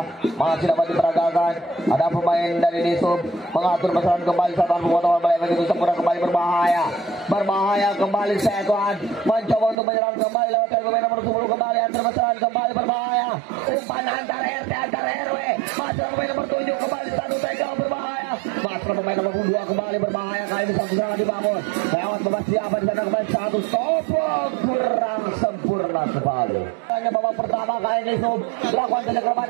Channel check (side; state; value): left; drops out; at 9.8 s